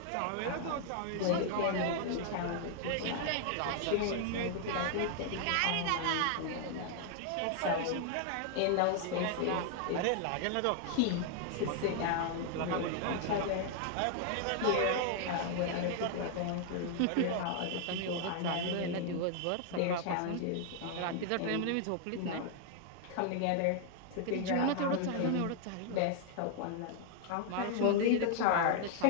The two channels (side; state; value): both; different; correlation 0.00